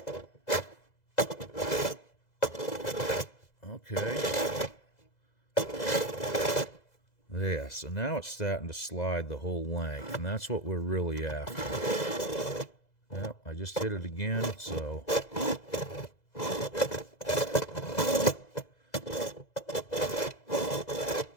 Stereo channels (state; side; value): late; right; 2.0 ms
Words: Okay. There, so now it's starting to slide the whole length, and that's what we're really after. Yep, I just hit it again, so.